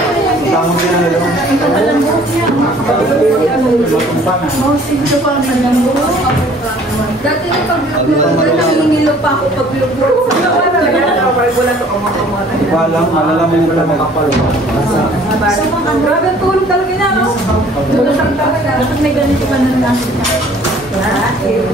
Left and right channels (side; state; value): both; normal; correlation 0.54